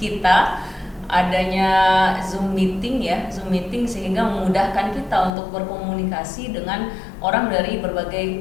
adanya Zoom meeting sehingga memudahkan kita untuk berkomunikasi dengan orang dari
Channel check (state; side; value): drops out; right; at 5.4 s